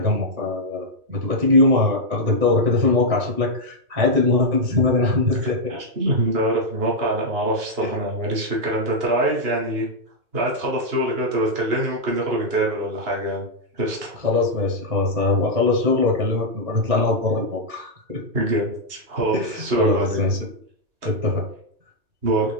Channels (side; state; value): left; late; 2.8 ms